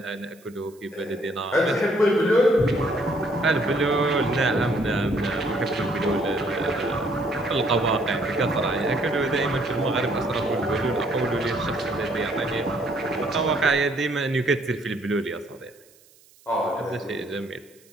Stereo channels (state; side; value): noise; right; hiss, 29 dB below the sound